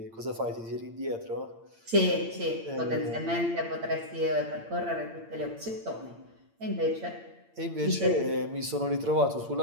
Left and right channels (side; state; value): left; late; 8.8 ms